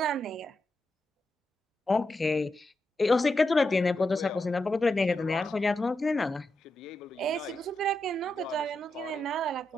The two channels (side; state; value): both; normal; correlation 0.86